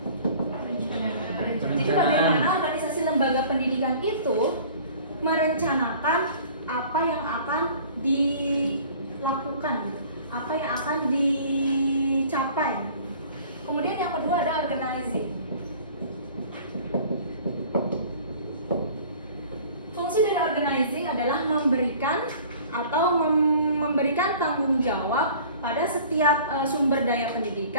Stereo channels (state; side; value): inverted; both; correlation -0.48